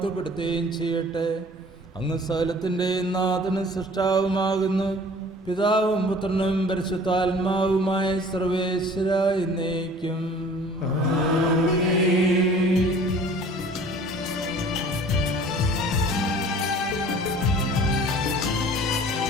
ചെയ്യട്ടെ. അങ്ങ് സകലത്തിൻ്റെയും നാഥനും സൃഷ്ടാവുമാകുന്നു. പിതാവും പുത്രനും പരിശുദ്ധാത്മാവുമായ സർവേശ്വര എന്നേക്കും.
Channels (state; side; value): normal; both; correlation 0.48